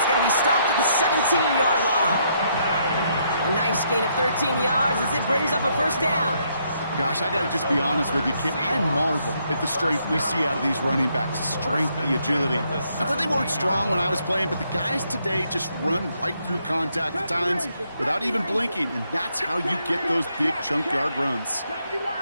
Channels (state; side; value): inverted; both; correlation -0.74